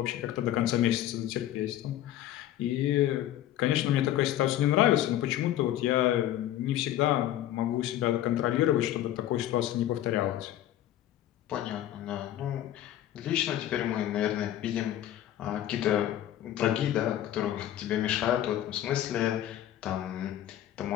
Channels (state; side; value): quieter; right; 12.6 dB